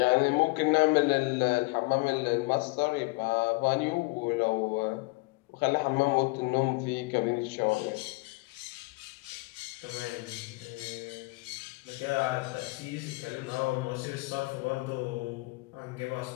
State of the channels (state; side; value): quieter; right; 25.4 dB